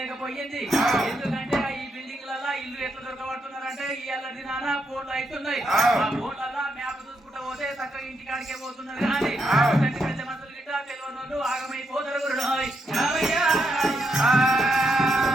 ఎందుకంటే ఈ బిల్డింగ్లలో ఇల్లు ఎట్లా దొరకబడుతున్నారంటే ఇయ్యాల దినాన ఫోన్లు అవుతున్నాయి ఆ ఫోన్లలో మ్యాప్ చూసుకుంటూ పోతే చక్కగా ఇంటికాడికే పోతున్నారు కానీ పెద్ద మనుషులు గిట్ట తెలియని వాళ్ళు ఆగమైపోతారు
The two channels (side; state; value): both; normal; correlation 0.80